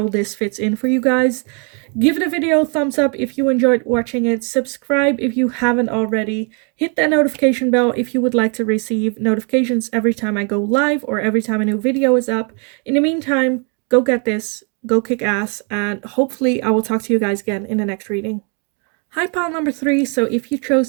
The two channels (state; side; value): quieter; left; 37.4 dB